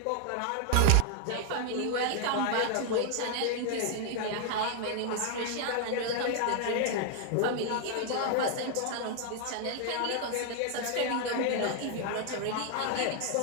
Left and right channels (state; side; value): different; both; correlation 0.00